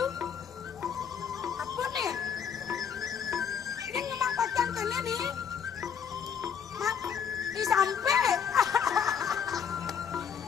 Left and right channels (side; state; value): right; quieter; 7.5 dB